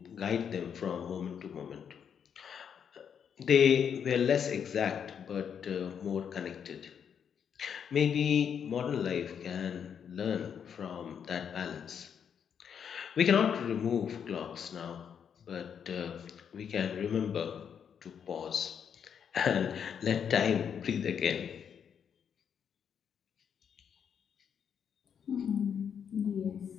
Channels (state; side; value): quieter; right; 7.7 dB